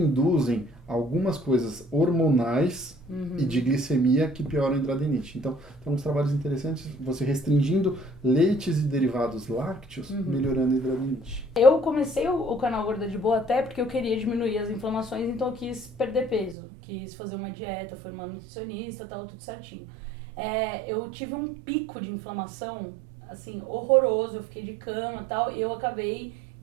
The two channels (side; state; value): left; drops out; at 16.6 s